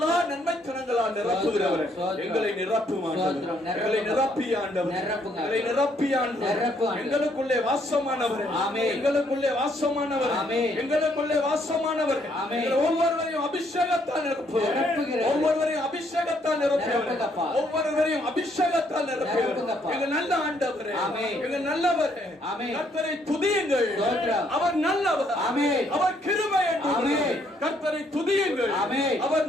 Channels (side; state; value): both; normal; correlation 0.70